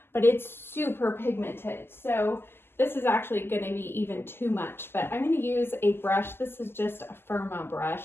but it's super pigmented. So this is actually going to be even too much, but I'm going to use a brush. This is just a Firma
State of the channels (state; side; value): late; right; 0.11 ms